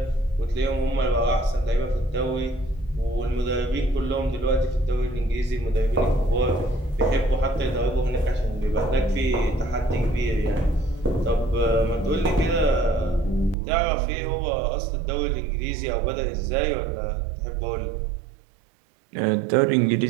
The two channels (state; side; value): drops out; left; at 13.6 s